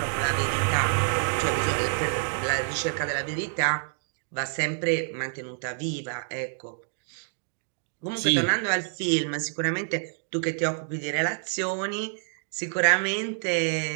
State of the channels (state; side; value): silent; left; digital silence